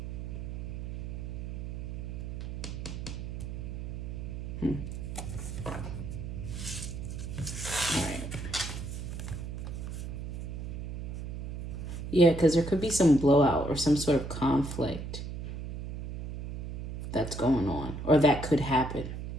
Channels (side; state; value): right; noise; hum, 7 dB below the sound